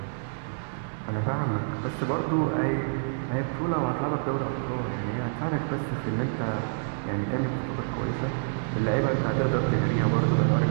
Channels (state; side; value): silent; left; digital silence